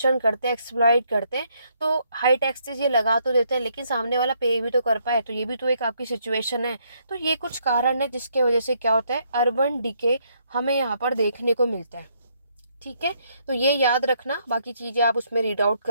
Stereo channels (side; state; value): both; inverted; correlation -0.72